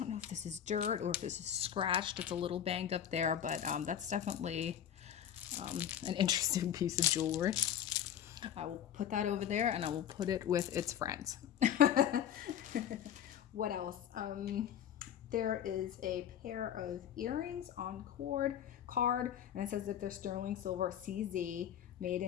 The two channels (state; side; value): quieter; right; 9.8 dB